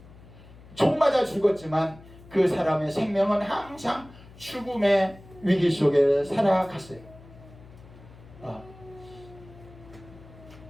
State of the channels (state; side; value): noise; left; hum, 21 dB below the sound